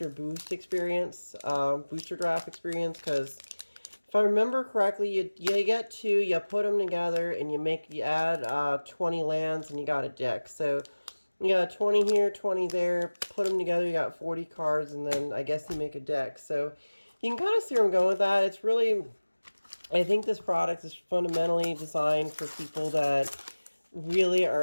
boost experience, booster draft experience, because if I remember correctly, you get 2, you put them together, and you add 20 lands, and you got a deck. So you got 20 here, 20 there, put them together, you got 40 cards, and then I guess you make a deck. So you can kind of see where I'm going with that. It's really, I think this product is fundamentally designed for people that really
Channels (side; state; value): both; inverted; correlation -1.00